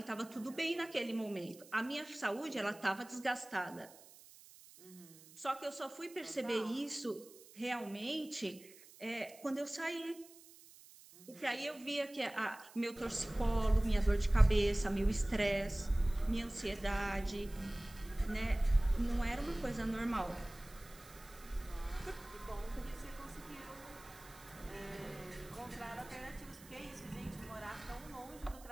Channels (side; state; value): right; noise; hiss, 21 dB below the sound